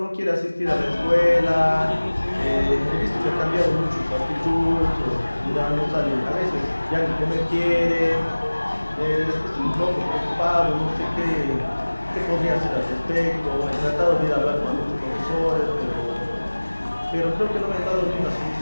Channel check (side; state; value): both; inverted; correlation -1.00